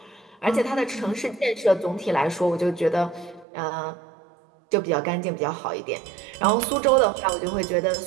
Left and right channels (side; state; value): left; drops out; at 3.5 s